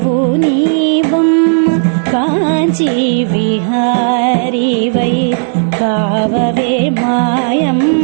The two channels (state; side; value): silent; left; digital silence